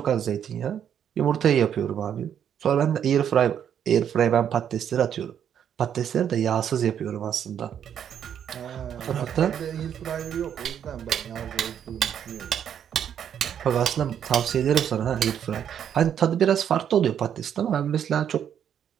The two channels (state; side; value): quieter; left; 9.0 dB